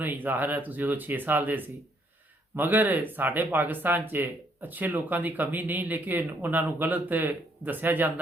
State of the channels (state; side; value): normal; both; correlation 0.69